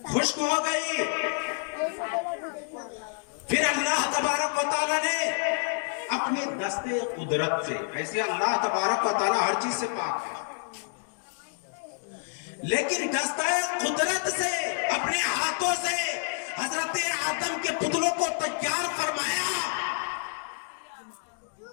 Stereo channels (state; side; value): silent; right; digital silence